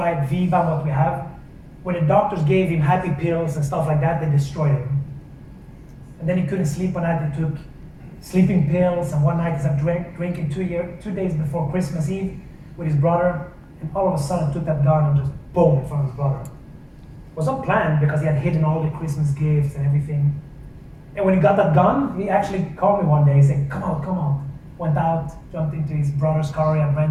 at Viva, what we have, when the doctors gave him happy pills and stuff like that, they destroyed him. And then he couldn't sleep one night. He took sleeping pills, and one night he started drinking 2 days before Christmas Eve with his brother, and all of a sudden took that gun and just boom in front of his brother. It was not planned because he had hidden all the Christmas gifts and everything. And when he got that gun, he actually called me one day. He said, come out. Went out, jumped into his brother's car he had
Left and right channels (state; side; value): identical; both; correlation 1.00